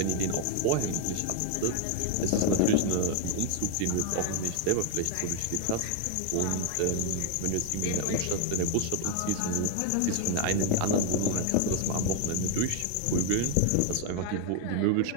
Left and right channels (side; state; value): both; different; correlation 0.01